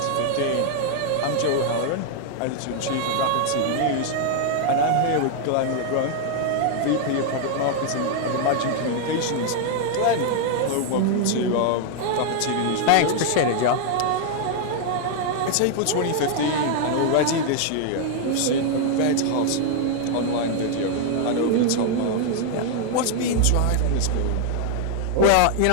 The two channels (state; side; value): different; both; correlation 0.00